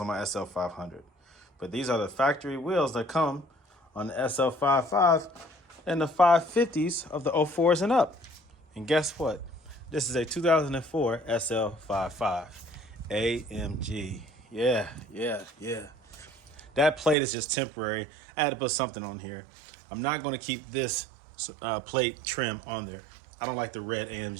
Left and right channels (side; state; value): left; drops out; at 17.2 s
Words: my SL500. But these are the factory wheels that come on the SL55 and the 550s of the 04s and up. And guess what? This is a 2004 SL55 AMG. Yeah. That plate is just temporary. I had to put something on here. I'm not going to keep this plate trim on there. I don't like the red